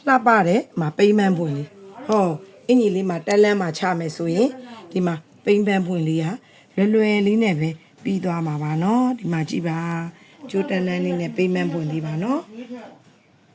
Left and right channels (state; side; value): identical; both; correlation 1.00